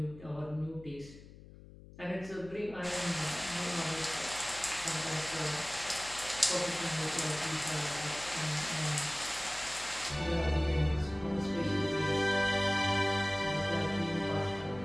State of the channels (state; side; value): noise; left; hum, 18 dB below the sound